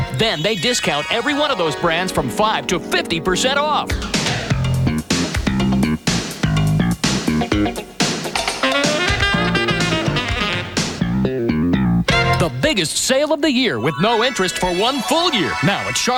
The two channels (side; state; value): both; identical; correlation 1.00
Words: Then they discount every one of those brands from 5 to 50% off. The biggest sale of the year with no interest for one full year. Now at